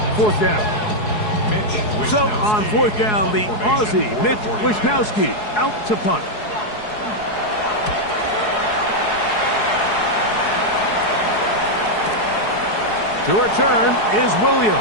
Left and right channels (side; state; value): right; late; 4.7 ms